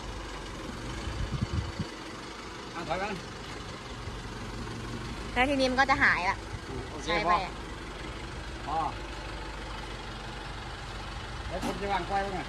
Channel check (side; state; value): both; identical; correlation 1.00